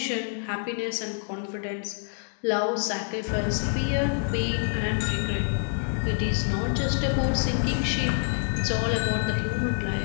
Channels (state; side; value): silent; right; digital silence